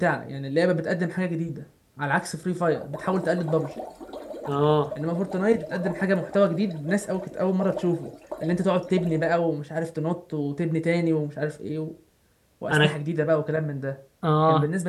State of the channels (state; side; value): identical; both; correlation 1.00